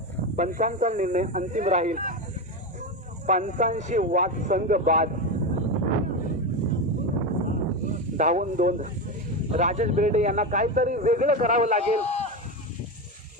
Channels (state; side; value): normal; both; correlation 0.16